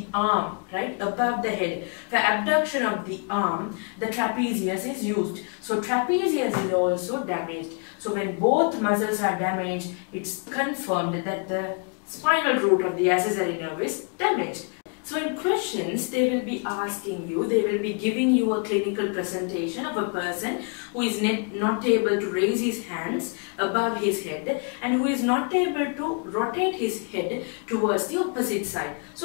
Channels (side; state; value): right; quieter; 36.2 dB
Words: arm, right, above the head. For abduction of the arm, the trapezius is used. So trapezius is also damaged. So when both muscles are damaged, it's confirmed that the spinal root of the accessory nerve is damaged. So in questions, they will be asking you, they will be giving you a clinical presentation of a person who is not able to raise his hands above his head and who is not able to rotate his head towards the opposite side.